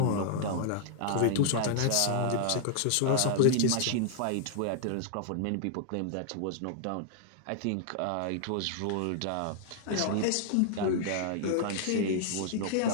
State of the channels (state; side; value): different; both; correlation 0.00